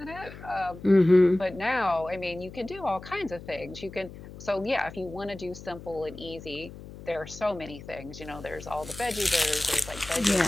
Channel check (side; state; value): left; noise; hum, 15 dB below the sound